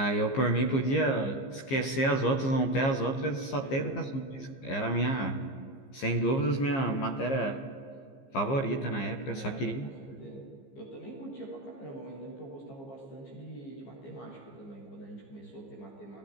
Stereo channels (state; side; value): late; right; 15 ms